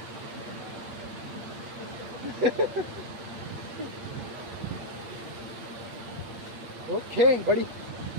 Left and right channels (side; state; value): left; late; 8.8 ms